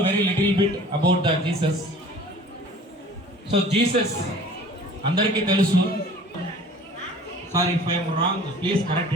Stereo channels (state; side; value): normal; both; correlation 0.47